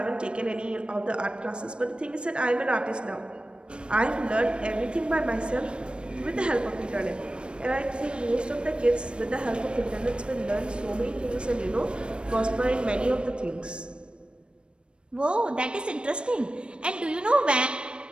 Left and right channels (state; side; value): late; left; 0.056 ms